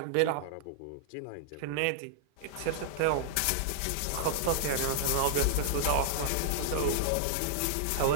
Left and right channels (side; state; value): both; different; correlation -0.01